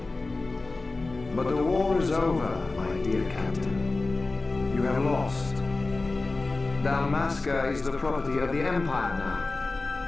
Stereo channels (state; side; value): quieter; right; 3.4 dB